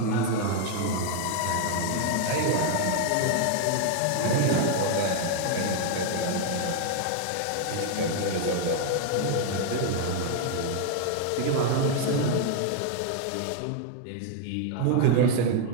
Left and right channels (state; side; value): different; both; correlation 0.00